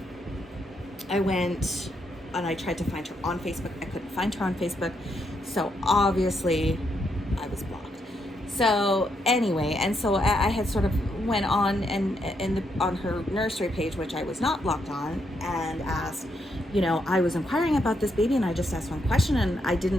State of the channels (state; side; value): normal; both; correlation 0.78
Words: I went and I tried to find her on Facebook. I couldn't find her on Facebook. So obviously I was blocked. So anyway, and so I had sort of went on on her nursery page, which I was not blocked on, and asked, I was inquiring about this baby, and I just asked one question, and I